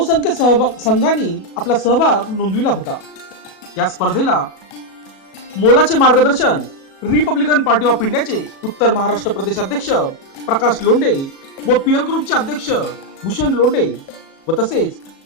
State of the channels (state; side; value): late; right; 37 ms